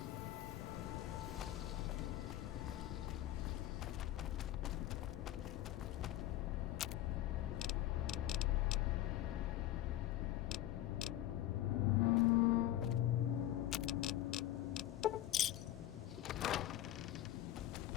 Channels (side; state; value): right; quieter; 13.8 dB